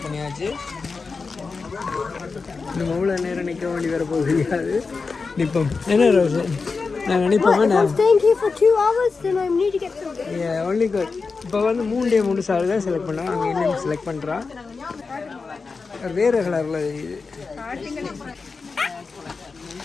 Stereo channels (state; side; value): quieter; right; 4.5 dB